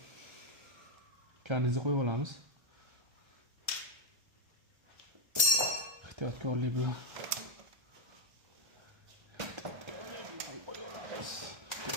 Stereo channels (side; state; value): left; late; 1.3 ms